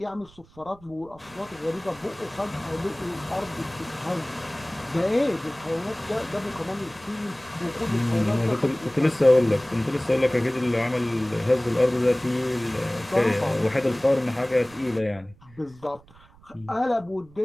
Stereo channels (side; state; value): right; noise; rumble, 25 dB below the sound